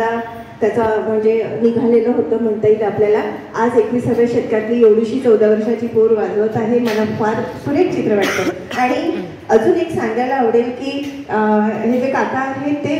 त्याचा म्हणजे निघालेलं होतं म्हणता येईल आपल्याला. आज 21व्या शतकातली एवढीशी 14 वर्षाची पोर वाजवत आहे. मला फार सुरेख चित्र वाटतं. आणि अजून एक सांगायला आवडेल की हे जे काका आहेत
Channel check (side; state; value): both; identical; correlation 1.00